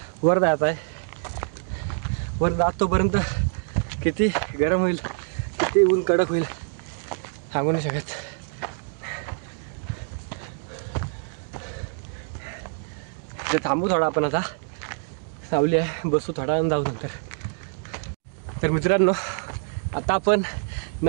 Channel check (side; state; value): left; silent; 61 dB below the other